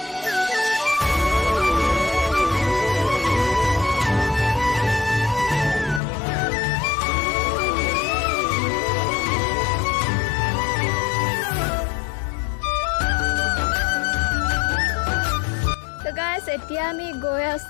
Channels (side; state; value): right; drops out; at 6.0 s